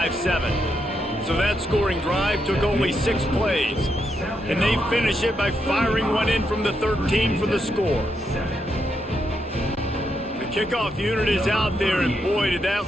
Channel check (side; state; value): both; normal; correlation 0.81